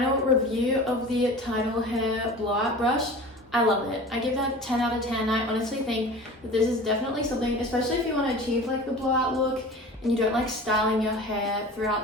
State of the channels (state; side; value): normal; both; correlation 0.38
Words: review of the Tidal hair blowout brush. I love it. I give that 10 out of 10. I honestly think that this is definitely something, especially if you want to achieve like the blowout look and you don't like styling your hair